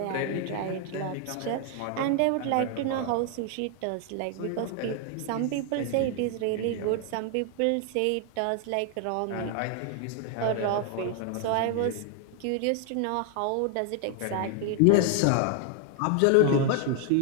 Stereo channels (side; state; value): both; different; correlation 0.00